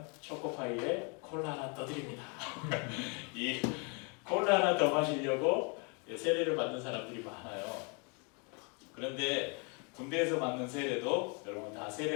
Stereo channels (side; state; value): right; quieter; 34.4 dB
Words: 초코파이에 콜라 하나 떠드립니다. 이 콜라 하나 더 마시려고 세례를 받는 사람들이 많아요. 그런데 군대에서 받는 세례도 여러분 다